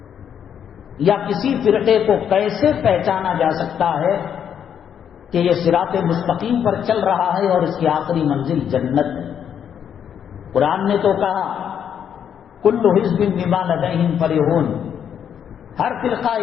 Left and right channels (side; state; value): right; quieter; 8.6 dB